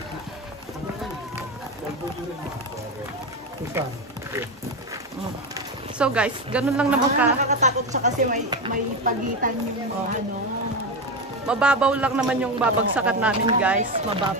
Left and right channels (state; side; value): normal; both; correlation 0.15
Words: So guys, ganun lang naman ka. Nakakatakot siya kasi may pagitan yung ano. Mababaw lang naman yung babagsakan namin guys.